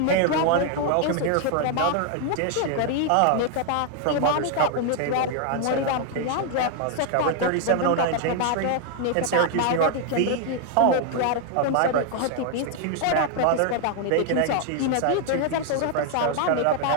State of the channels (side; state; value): both; different; correlation 0.00